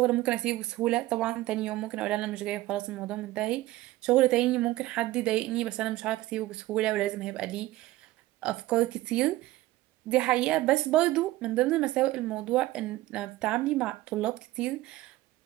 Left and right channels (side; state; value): left; quieter; 17.1 dB